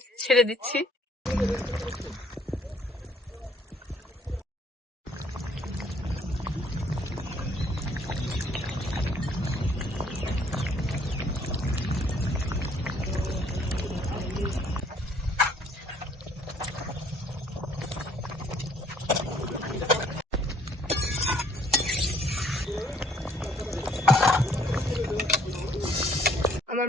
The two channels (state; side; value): normal; both; correlation 0.63